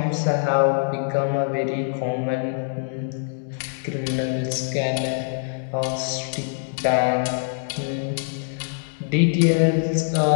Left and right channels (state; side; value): silent; right; 63 dB below the other